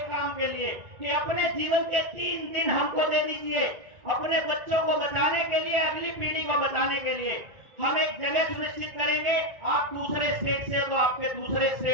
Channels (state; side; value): late; left; 1.4 ms